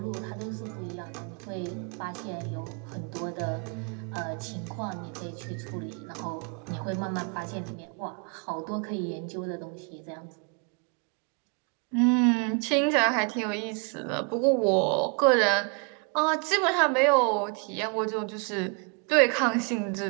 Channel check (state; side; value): quieter; left; 37.0 dB